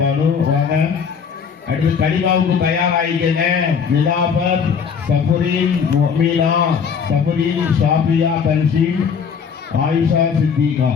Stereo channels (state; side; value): quieter; right; 6.5 dB